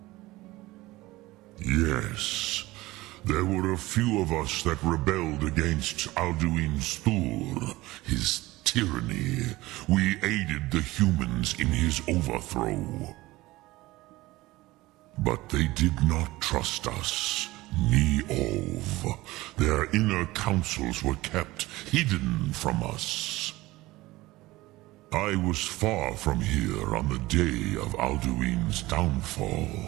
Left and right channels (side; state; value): left; quieter; 19.1 dB